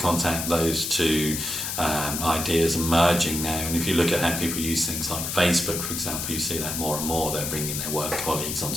those two ideas are merging now. And if you look at how people use things like Facebook, for example, you see that more and more. They're bringing their work colleagues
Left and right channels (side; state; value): left; noise; hiss, 3 dB below the sound